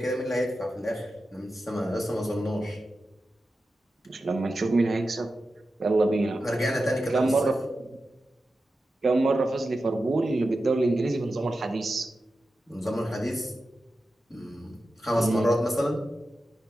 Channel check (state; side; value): normal; both; correlation 0.92